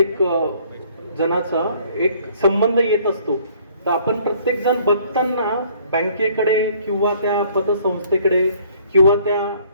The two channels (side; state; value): both; inverted; correlation -0.59